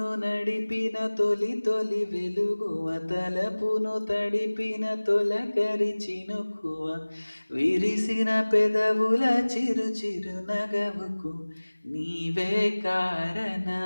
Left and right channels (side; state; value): both; inverted; correlation -1.00